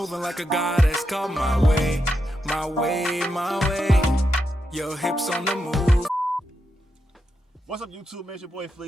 like a goddess, come my way, my way, my way. Your hips on the move. What's up, YouTube? Man, it's your boy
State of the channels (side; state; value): both; normal; correlation 0.85